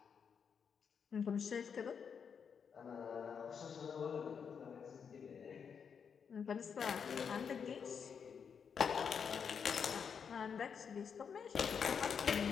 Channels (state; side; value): quieter; right; 6.7 dB